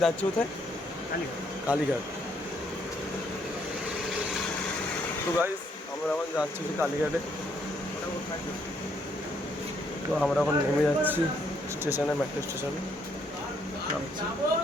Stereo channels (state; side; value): normal; both; correlation 0.71